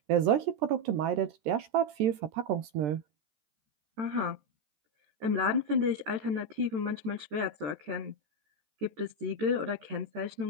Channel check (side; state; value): left; late; 13 ms